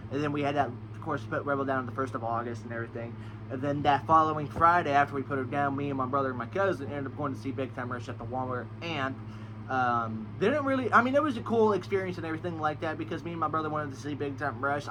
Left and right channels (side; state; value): both; identical; correlation 1.00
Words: and then we had that, of course, put Rebel down on the 1st of August and everything. And then that following Friday, after we put her down, me and my brother and my cousin ended up going to see Big Time Rush at the Walmart, and it was a cool experience and everything like that, because me and my brother wanted to see Big Time Rush.